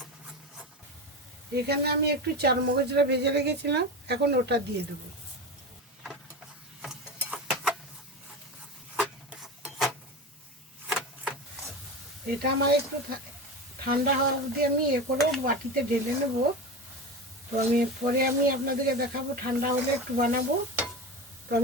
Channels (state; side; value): normal; both; correlation 0.24